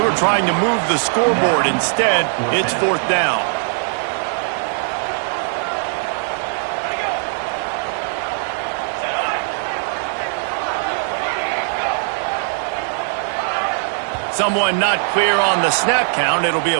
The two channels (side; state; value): left; silent; 66 dB below the other